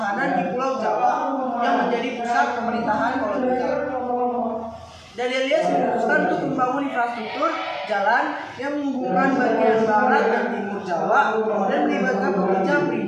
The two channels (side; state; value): both; identical; correlation 1.00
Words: di Pulau Jawa yang menjadi pusat pemerintahan kolonial. Dandeis memutuskan untuk membangun infrastruktur jalan yang menghubungkan bagian barat dan timur Jawa dan melibatkan pekerja